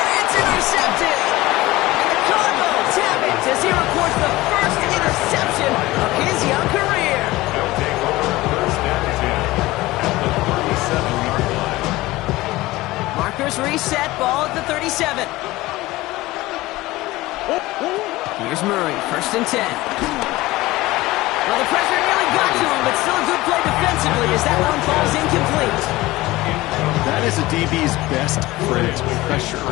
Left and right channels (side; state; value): right; quieter; 18.9 dB